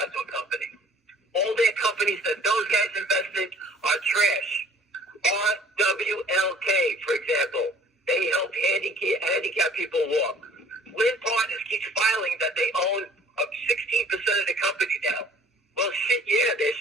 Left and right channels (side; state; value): both; normal; correlation 0.53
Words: to a company. All their companies that those guys invest in are trash. RWLK, for example, they help handicap people walk. Lynn Partners keeps filing that they own 16% of the company now. Well, shit, yeah, they're